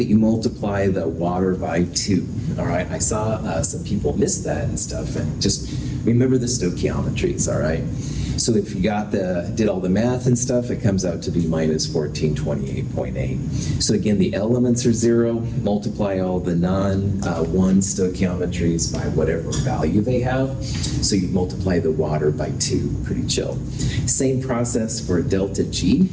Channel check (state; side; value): identical; both; correlation 1.00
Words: you multiply the water by 2. All right, I saw some people miss that and stuff, and just remember the stoichiometries, all right? So if you did all the math and stuff, it comes out to be minus 1428.8. So again, the elements are 0, multiply all the non-1 stoichiometries by whatever value they have. So you multiply the water by 2, pretty chill. Same process for delta G.